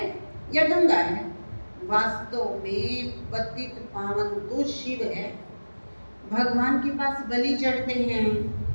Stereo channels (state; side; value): inverted; both; correlation -1.00